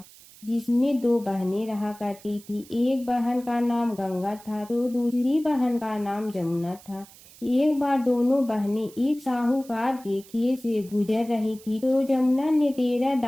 जिसमें 2 बहनें रहा करती थी। एक बहन का नाम गंगा था तो दूसरी बहन का नाम जमुना था। एक बार दोनों बहनें एक साहूकार के खेत से गुजर रही थी तो जमुना ने 13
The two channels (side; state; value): right; noise; hiss, 22 dB below the sound